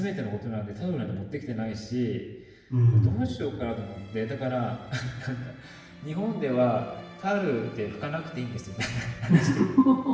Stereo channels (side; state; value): both; identical; correlation 1.00